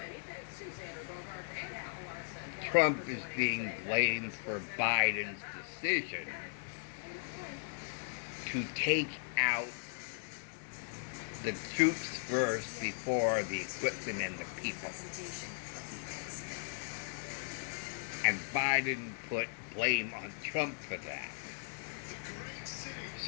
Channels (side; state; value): right; silent; digital silence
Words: Trump is being blamed for Biden's decision to take out the troops first before the equipment and the people. And Biden put blame on Trump for that.